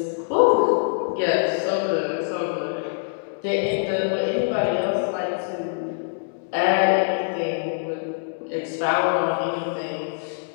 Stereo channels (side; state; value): right; silent; digital silence